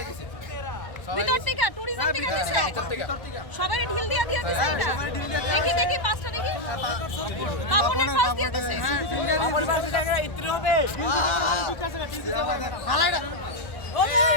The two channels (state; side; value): late; right; 1.3 ms